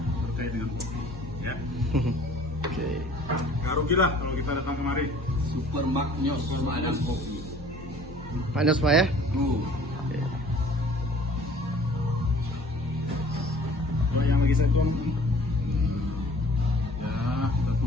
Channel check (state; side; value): normal; both; correlation 0.51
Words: terkait dengan kopi. Ya. Oke. Gak rugi lah kalau kita datang kemari. Super Magnos Seladang Kopi. Panas Pak ya? Coba yang lagi saya tuang. Ya, kita